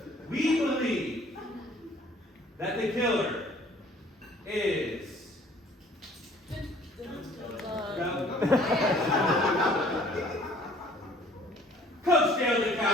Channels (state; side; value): normal; both; correlation 0.55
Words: we believe that the killer is Coach Gail